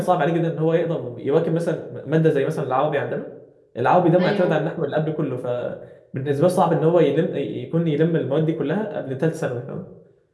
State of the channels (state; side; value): identical; both; correlation 1.00